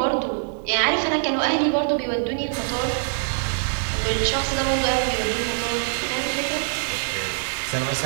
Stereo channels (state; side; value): silent; left; digital silence